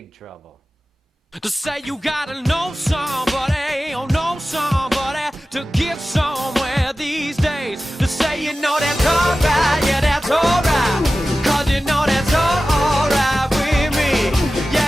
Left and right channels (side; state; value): both; normal; correlation 0.95